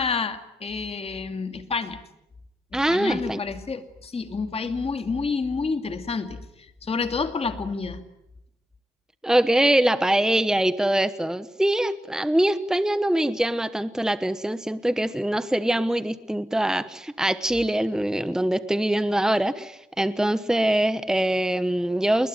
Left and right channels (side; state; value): both; normal; correlation 0.90